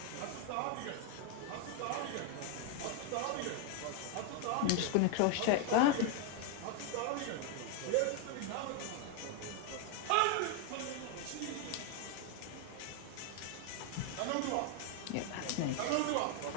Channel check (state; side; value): different; both; correlation 0.01